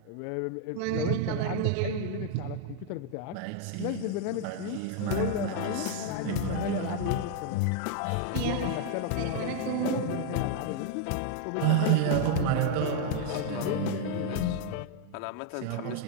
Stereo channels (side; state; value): both; different; correlation 0.00